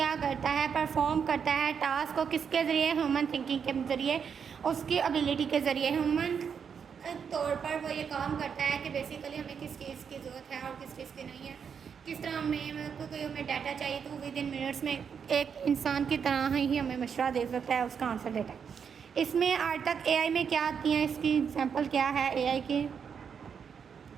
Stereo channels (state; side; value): quieter; left; 6.9 dB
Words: करता है, परफॉर्म करता है टास्क को किसके ज़रिए? ह्यूमन थिंकिंग के ज़रिए, उसकी एबिलिटी के ज़रिए। ह्यूमन तौर पर वो ये काम करता है कि बेसिकली हमें किस चीज़ की ज़रूरत है और किस चीज़ की नहीं है। किस तरह कोई हमें डाटा चाहिए तो विद इन मिनट्स में एक इंसान की तरह ही हमें मशवरा दे सकता है, उसका आंसर देता है। इसमें आज तक एआई में क्या आती हैं, इसकी एग्जाम्पल क्या है एआई की?